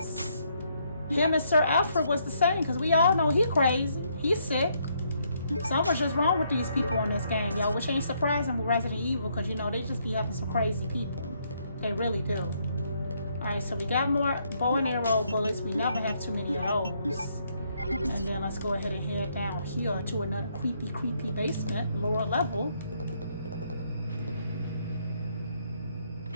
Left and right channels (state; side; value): inverted; both; correlation -0.72